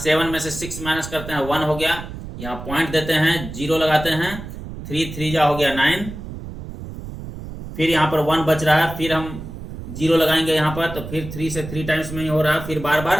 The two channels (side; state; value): right; noise; rumble, 10 dB below the sound